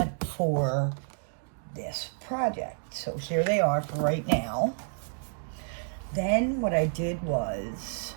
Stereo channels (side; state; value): left; silent; digital silence